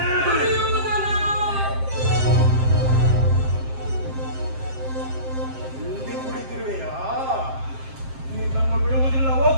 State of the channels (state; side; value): late; left; 7.6 ms